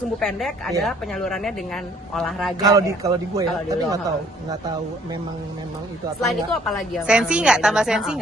pendek adalah penyalurannya dengan olahraga. Kalau di gue ya, Kalau di tapi lo, nggak tahu memang itu atau Selain enggak. itu apa lagi yang Sensi nggak? Tambah sensi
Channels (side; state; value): both; normal; correlation 0.60